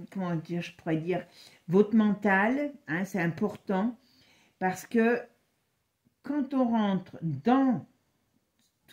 comment dire, je pourrais dire, votre mental, hein, c'est important, parce que quand on rentre dans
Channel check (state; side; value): identical; both; correlation 1.00